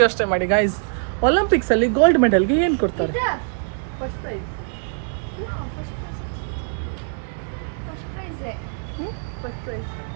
ಯೋಚನೆ ಮಾಡಿ ಗೈಸ್. ಒಲಿಂಪಿಕ್ಸಲ್ಲಿ ಗೋಲ್ಡ್ ಮೆಡಲ್ಗೆ ಏನು ಕೊಡ್ತಾರೆ? First prize.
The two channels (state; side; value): silent; left; 63 dB below the other